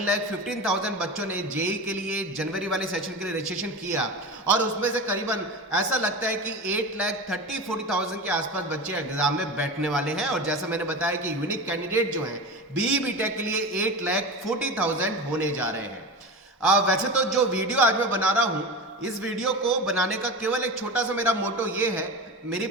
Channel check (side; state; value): both; normal; correlation 0.27